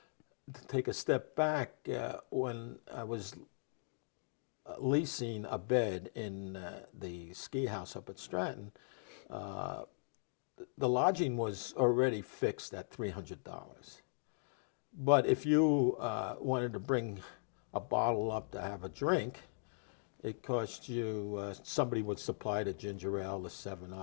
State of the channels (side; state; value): right; silent; digital silence